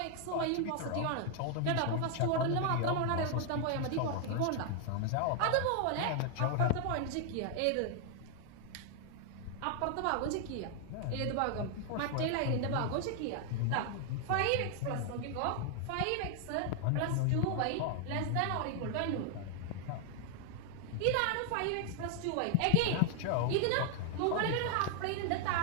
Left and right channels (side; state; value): both; different; correlation 0.00